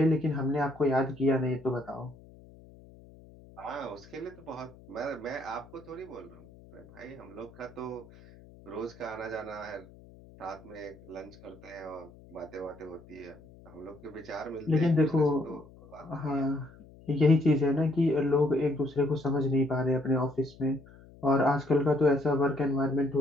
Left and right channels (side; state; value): left; noise; hum, 22 dB below the sound